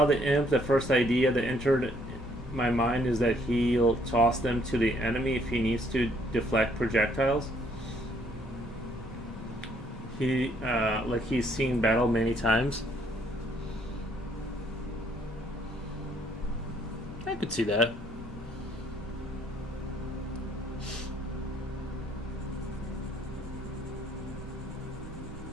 the imp. The first idea that entered my mind is that he'll toss them to the enemy if he needs to deflect projectiles. He's seen battle many times. I could see that.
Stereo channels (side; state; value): both; normal; correlation 0.66